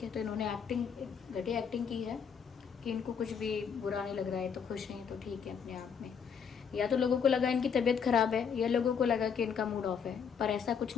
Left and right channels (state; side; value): quieter; right; 6.9 dB